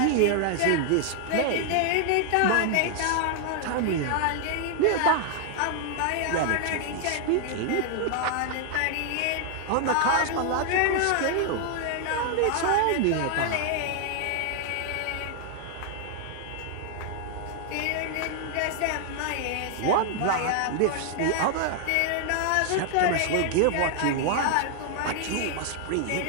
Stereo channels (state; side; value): different; both; correlation 0.00